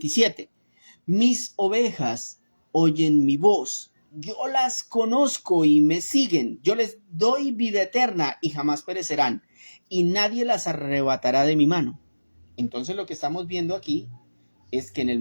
Mis ovejas oyen mi voz, yo las conozco y me siguen, yo les doy vida eterna y jamás perecerán, y nadie las arrebatará de mi mano. Entonces lo que estamos viendo aquí es que en el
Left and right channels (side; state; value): both; inverted; correlation -1.00